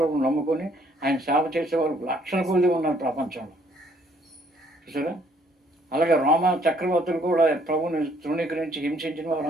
నమ్ముకొని ఆయన సేవ చేసేవాళ్ళు లక్షల కొద్ది ఉన్నారు ప్రపంచంలో, చూసారా. అలాగే రోమా చక్రవర్తులు కూడా ప్రభుని తృణీకరించి హింసించిన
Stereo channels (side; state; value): both; normal; correlation 0.64